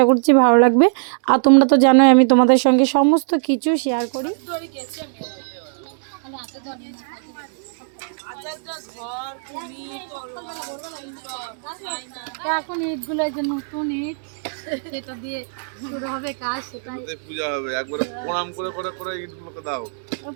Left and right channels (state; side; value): silent; left; 65 dB below the other